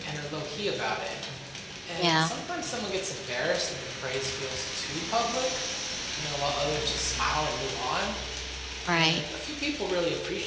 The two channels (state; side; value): identical; both; correlation 1.00